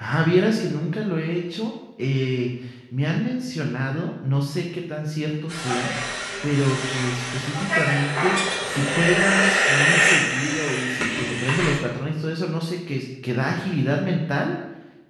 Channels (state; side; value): identical; both; correlation 1.00